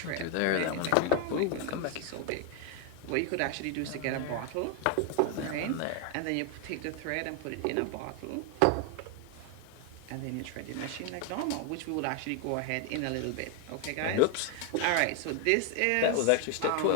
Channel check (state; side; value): different; both; correlation 0.00